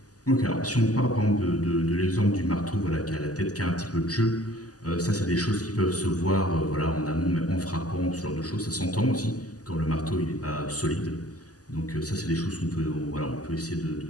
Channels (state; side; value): late; right; 0.67 ms